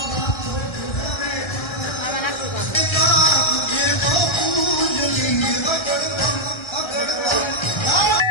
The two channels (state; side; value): late; right; 1.3 ms